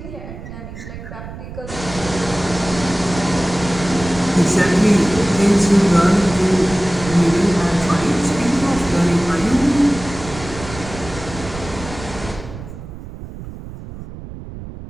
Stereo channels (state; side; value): noise; right; rumble, 12 dB below the sound